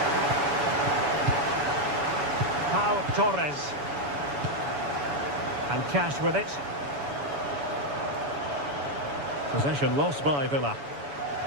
Pau Torres. And Cash with it. Possession lost by Villa.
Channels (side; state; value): left; late; 7.0 ms